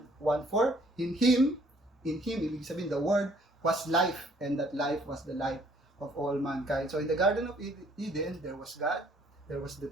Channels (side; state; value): both; normal; correlation 0.61